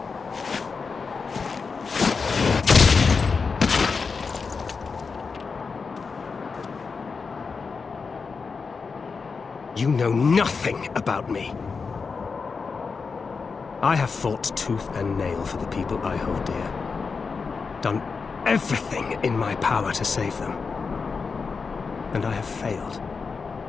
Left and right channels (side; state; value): right; quieter; 5.0 dB